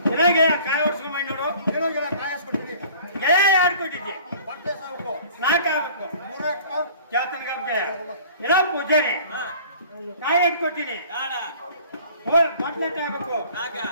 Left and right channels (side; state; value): both; inverted; correlation -0.48